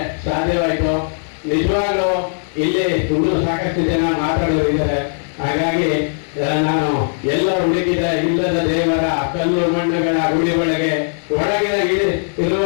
ಸಾಧ್ಯವಾಯಿತು. ನಿಜವಾಗ್ಲೂ ಇಲ್ಲಿ ಇನ್ನೂ ಸಾಕಷ್ಟು ಜನ ಮಾತಾಡೋರಿದ್ದಾರೆ. ಹಾಗಾಗಿ ನಾನು ಎಲ್ಲ ಹುಡುಕಿದ ಇಲ್ಲದ ದೇವರ ಕಲ್ಲು ಮಣ್ಣುಗಳ ಗುಡಿ ಒಳಗೆ ಒಳಗಿನ ಇರುವ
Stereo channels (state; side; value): silent; right; digital silence